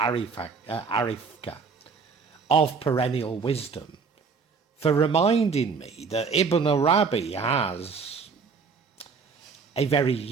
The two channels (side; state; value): left; quieter; 5.2 dB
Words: of Perennial Wisdom for reminding me that Ibn Arabi has a very